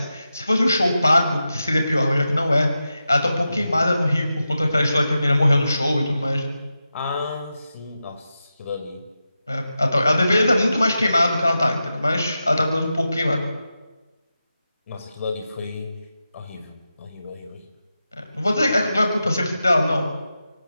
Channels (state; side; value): inverted; both; correlation -0.90